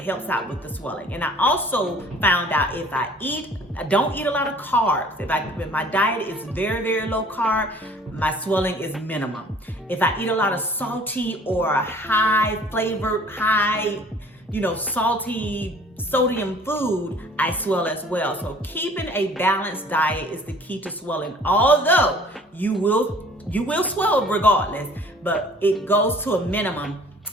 out with the swelling. And I also found out if I don't eat a lot of carbs. If my diet is very, very low carb, my swelling is minimum. If I eat a lot of salty or high flavored, salty sodium food, I swell as well. So keeping a balanced diet is the key to swelling. Although you will swell regardless, but it goes to a minimum,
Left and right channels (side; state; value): both; normal; correlation 0.52